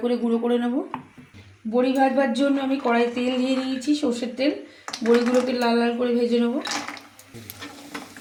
করে গুঁড়ো করে নেব। বড়ি ভাজবার জন্য আমি কড়াই তেল দিয়ে নিয়েছি, সর্ষের তেল। বড়িগুলোকে লাল লাল করে ভেজে নেব।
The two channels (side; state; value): both; identical; correlation 1.00